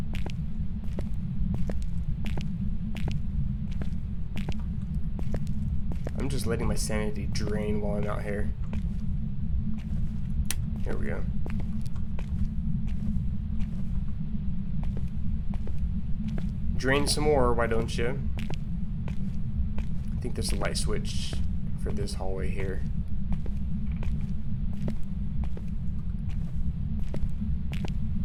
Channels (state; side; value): identical; both; correlation 1.00